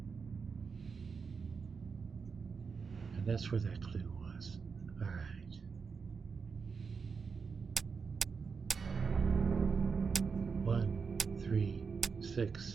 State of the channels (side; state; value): left; quieter; 5.4 dB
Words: And that's where that clue was. All right. One, 3,